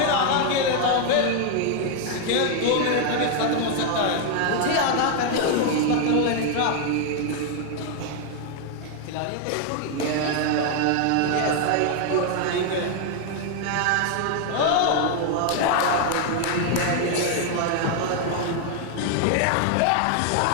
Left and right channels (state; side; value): different; both; correlation 0.00